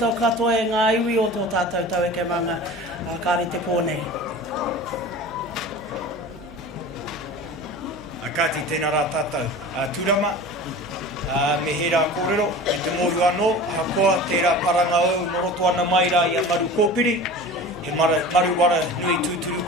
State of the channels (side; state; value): both; normal; correlation 0.37